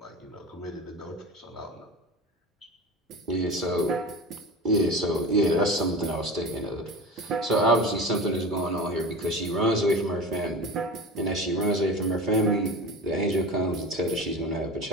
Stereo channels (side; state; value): both; normal; correlation 0.31